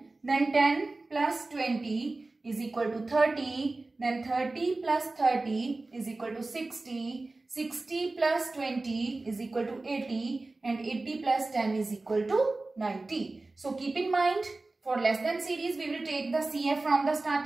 Then 10 plus 20 is equal to 30. Then 30 plus 30 is equal to 60. 60 plus 20 is equal to 80. And 80 plus 10 is equal to 90. So keep in mind, for less than series, we will take the CF from the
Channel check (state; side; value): quieter; left; 3.2 dB